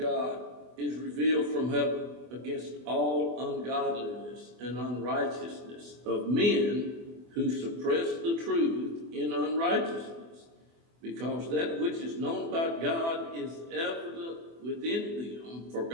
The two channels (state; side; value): late; left; 24 ms